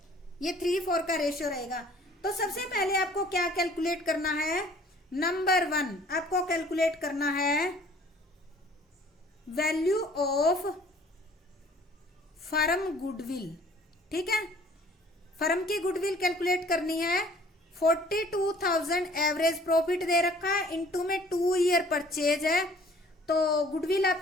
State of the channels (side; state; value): both; normal; correlation 0.54